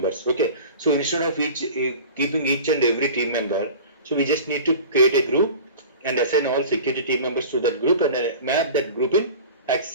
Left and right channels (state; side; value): inverted; both; correlation -0.38